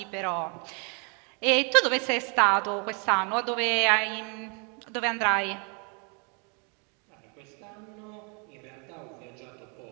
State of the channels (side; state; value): left; quieter; 35.9 dB